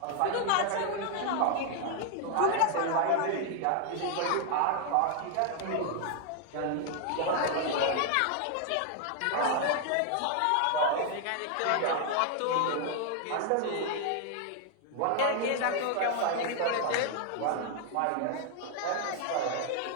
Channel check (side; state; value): both; different; correlation 0.00